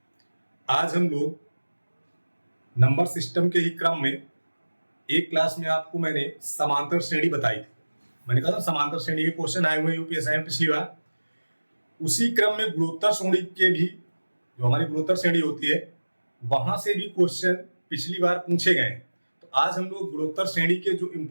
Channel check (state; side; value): inverted; both; correlation -1.00